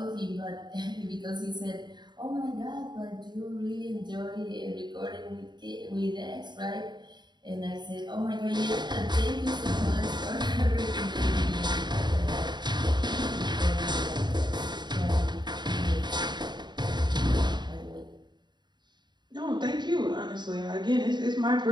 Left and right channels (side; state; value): left; late; 0.21 ms